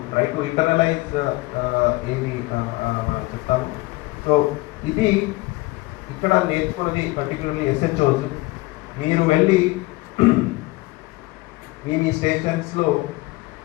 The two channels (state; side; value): quieter; right; 21.6 dB